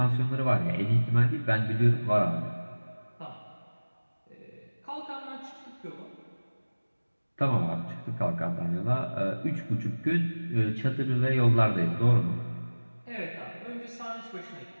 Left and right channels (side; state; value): both; inverted; correlation -1.00